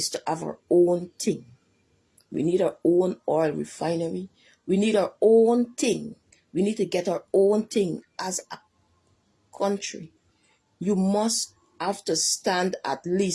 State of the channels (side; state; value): both; identical; correlation 1.00